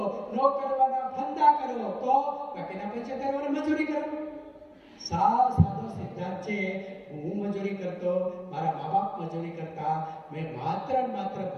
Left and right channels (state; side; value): identical; both; correlation 1.00